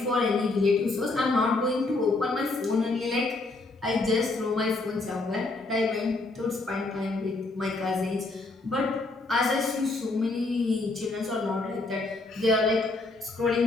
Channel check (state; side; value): quieter; right; 3.2 dB